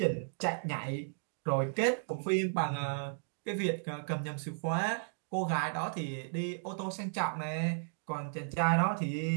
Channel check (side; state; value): left; silent; digital silence